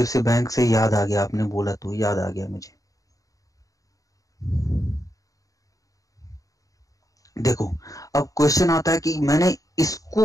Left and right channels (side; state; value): right; late; 0.16 ms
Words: बैंक से याद आ गया, आपने बोला तो याद आ गया मुझे। देखो, अब क्वेश्चन आता है कि मैंने